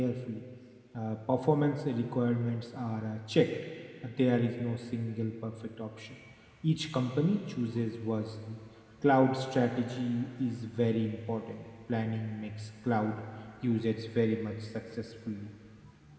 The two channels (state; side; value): identical; both; correlation 1.00